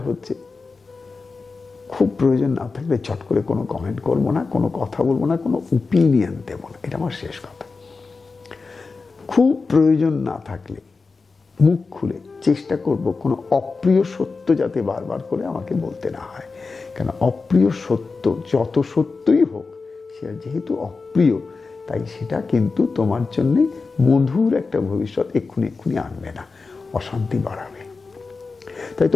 হচ্ছে খুব প্রয়োজন না থাকলে চট করে কোনো কমেন্ট করবো না, কোনো কথা বলবো না, কোনো ওপিনিয়ন দেবো না, এটা আমার শেষ কথা। খুব প্রয়োজন না থাকলে মুখ খুলে চেষ্টা করব কোনো অপ্রিয় সত্য যাতে বারবার করে আমাকে বলতে না হয়। কেন অপ্রিয় সত্য যত সত্যই হোক, সে যেহেতু অপ্রিয়, তাই সেটা কিন্তু তোমার জন্য মধুর একটা ভবিষ্যৎ এক্ষুনি আনবে না, অশান্তি বাড়াবে। তাই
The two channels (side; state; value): right; quieter; 4.3 dB